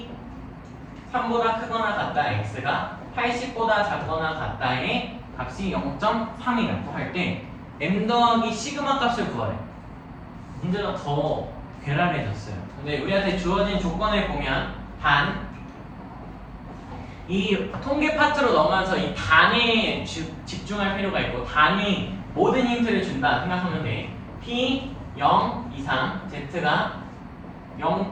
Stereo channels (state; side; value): identical; both; correlation 1.00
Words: 3보다 크거나 같다 x가 80보다 작거나 같다의 값이 0.3이라고 할 때 m 더하기 시그마 값을 구하래. 문제가 더 괴랄해졌어요. 근데 우리한테 주어진 조건을 보면 단 이 통계 파트로 넘어와서 이 단에 집중할 필요가 있고 단이 모든 힌트를 준다 생각하면 돼. p 0 이상 z가